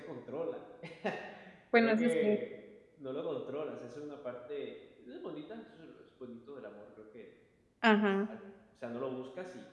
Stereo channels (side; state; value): both; identical; correlation 1.00